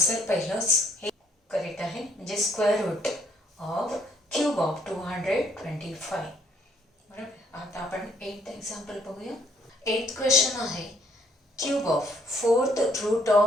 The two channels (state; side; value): normal; both; correlation 0.66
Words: पहिलंच हे करेक्ट आहे, म्हणजे square root of cube of 225. बरोबर. आता आपण 8th एक्झाम्पल बघूया. 8th क्वेश्चन आहे, cube of 4th root